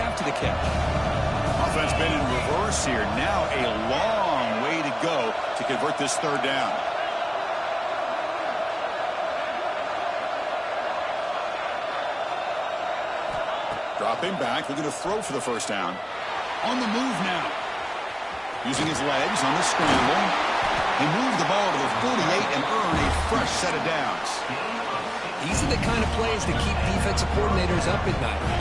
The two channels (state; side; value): identical; both; correlation 1.00